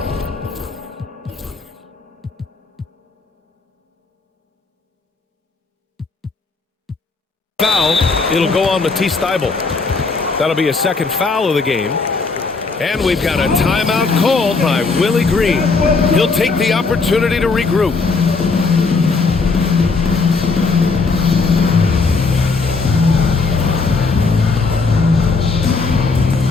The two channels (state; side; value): quieter; right; 4.2 dB